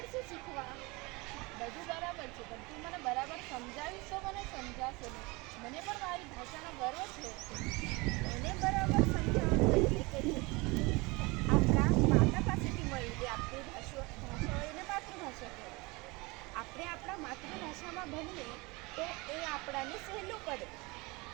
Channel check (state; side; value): quieter; left; 25.3 dB